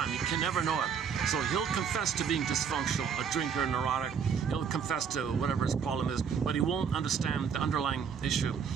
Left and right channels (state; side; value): quieter; left; 6.9 dB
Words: You can never know it. So he'll confess to being dysfunctional, a drinker, neurotic. He'll confess to whatever his problem is, but he won't understand the underlying issue.